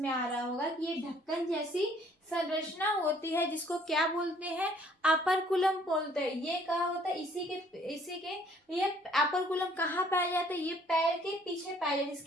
आ रहा होगा कि ये ढक्कन जैसी संरचना होती है, जिसको क्या बोलते हैं? ऑपरकुलम बोलते हैं। ये कहाँ होता है? इसी के ये ऑपरकुलम कहाँ पाया जाता है? ये पैर के पीछे पाया जाता है।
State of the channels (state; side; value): normal; both; correlation 0.60